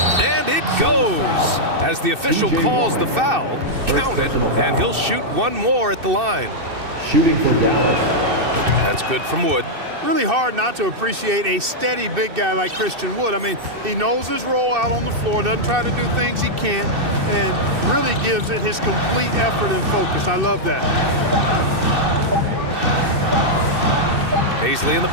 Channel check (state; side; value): late; left; 2.6 ms